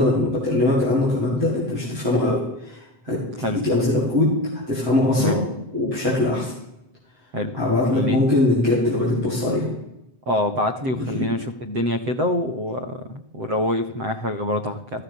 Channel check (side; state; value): left; late; 7.9 ms